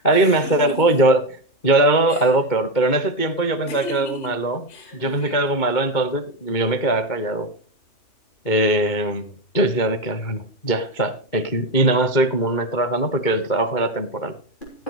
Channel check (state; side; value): late; right; 2.2 ms